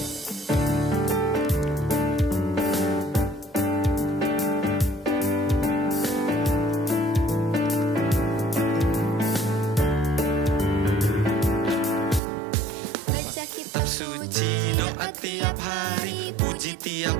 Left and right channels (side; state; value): left; drops out; at 12.2 s